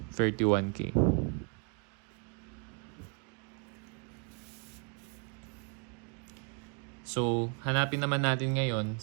So, hanapin naman natin ngayon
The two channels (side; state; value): left; quieter; 37.7 dB